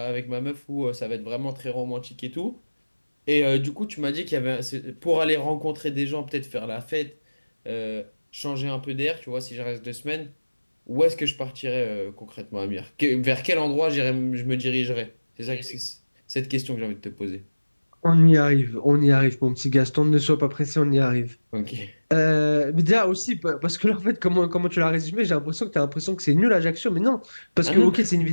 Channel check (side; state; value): both; inverted; correlation -1.00